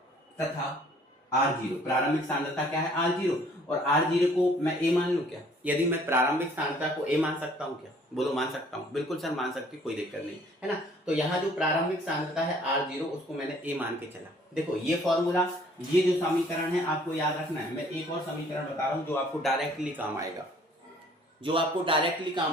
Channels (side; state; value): both; normal; correlation 0.57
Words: तथा R0, प्रारंभिक सांद्रता क्या है, R0, और R0 को मैं A मान लूं क्या। यदि मैं प्रारंभिक सांद्रता को A मान सकता हूं क्या, बोलो मान सकता हूं, बिल्कुल सर मान सकते, कोई दिक्कत नहीं, है ना। तो यहाँ जो प्रारंभिक सांद्रता है R0, उसको मैंने A मान के चला। देखो ये फॉर्मूला, ये जो समीकरण है आपको याद रखना है। मैं एक और समीकरण बता रहा हूँ जो आपको डायरेक्टली काम